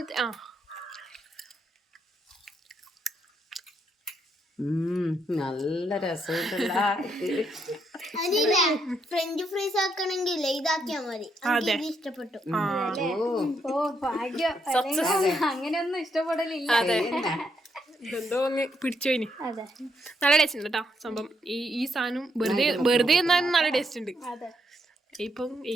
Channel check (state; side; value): normal; both; correlation 0.77